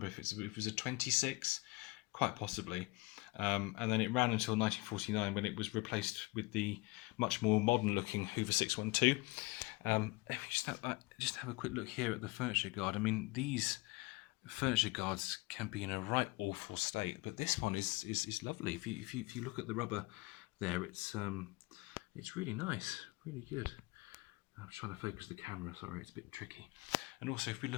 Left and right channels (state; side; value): quieter; right; 24.5 dB